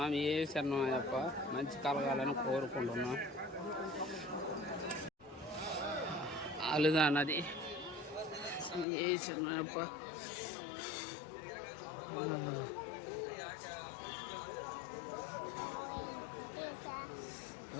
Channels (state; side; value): drops out; right; at 8.8 s